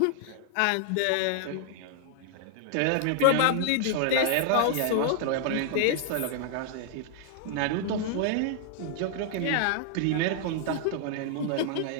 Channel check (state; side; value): different; both; correlation 0.00